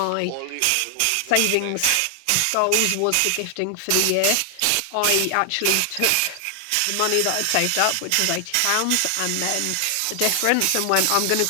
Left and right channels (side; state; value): both; different; correlation 0.00